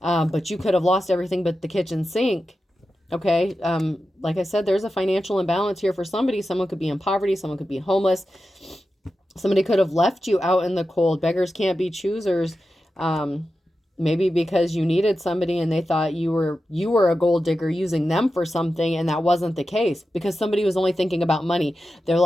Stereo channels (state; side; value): normal; both; correlation 0.92